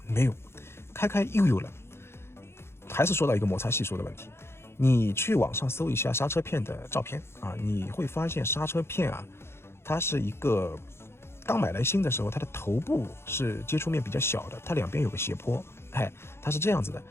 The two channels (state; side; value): late; right; 0.12 ms